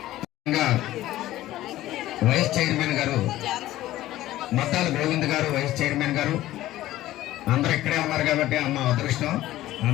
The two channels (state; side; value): quieter; right; 15.1 dB